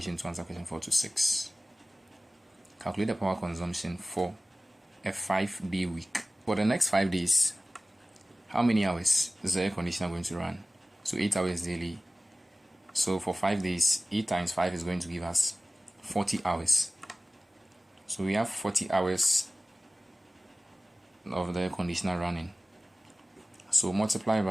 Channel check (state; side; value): normal; both; correlation 0.97